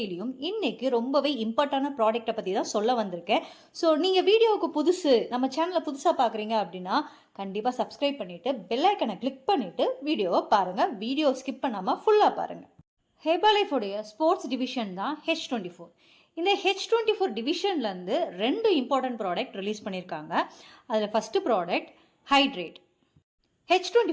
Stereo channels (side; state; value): both; identical; correlation 1.00